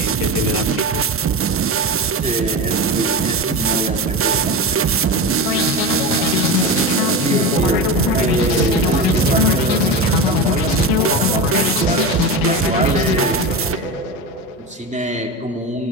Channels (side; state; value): both; normal; correlation 0.22